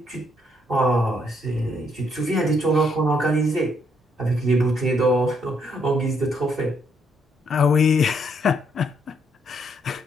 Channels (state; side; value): normal; both; correlation 0.72